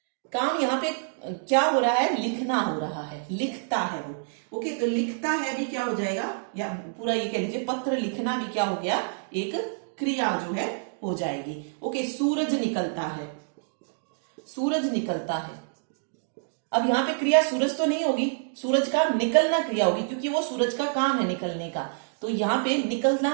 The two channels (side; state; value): left; silent; digital silence